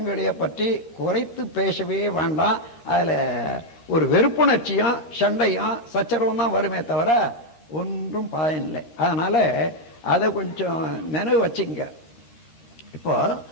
பற்றி குறைத்து பேசவே வேண்டாம். அதுல ஒரு வெறுப்புணர்ச்சியும் சண்டையும் சச்சரவும் தான் வருமே தவிர ஒன்றும் பயனில்லை. அதனால அதை கொஞ்சம் நினைவு வச்சுங்க. இப்போ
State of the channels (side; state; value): right; late; 13 ms